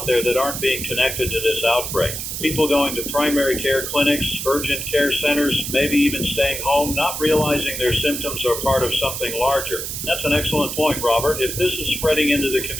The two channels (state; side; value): noise; right; hiss, 5 dB below the sound